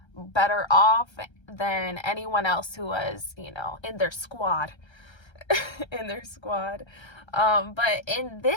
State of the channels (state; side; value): late; right; 1.3 ms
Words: better off than anyone else who was, in their squad. But in